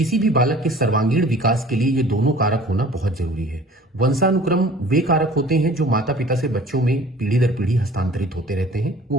भी बालक के सर्वांगीण विकास के लिए ये दोनों कारक होना बहुत जरूरी है। वंशानुक्रम वे कारक होते हैं जो माता पिता से बच्चों में पीढ़ी दर पीढ़ी हस्तांतरित होते रहते हैं, वो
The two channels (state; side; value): normal; both; correlation 0.48